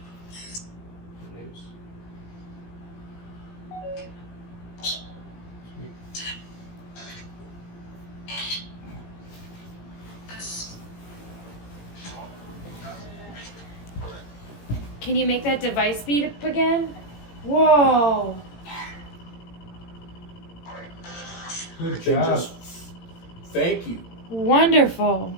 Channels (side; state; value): right; late; 17 ms